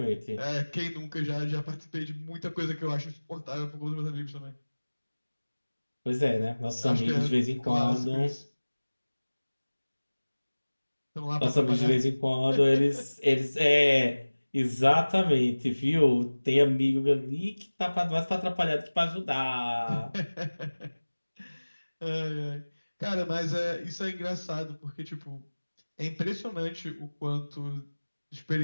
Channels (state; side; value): inverted; both; correlation -1.00